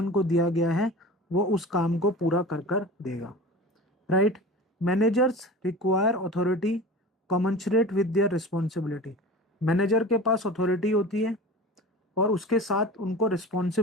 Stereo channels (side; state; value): both; normal; correlation 0.35